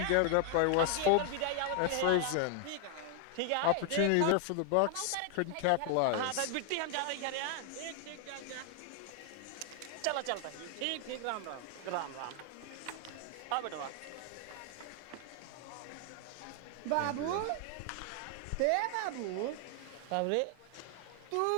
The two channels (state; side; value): different; both; correlation 0.00